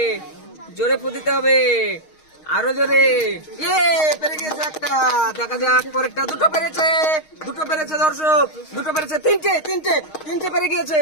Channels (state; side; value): late; right; 6.4 ms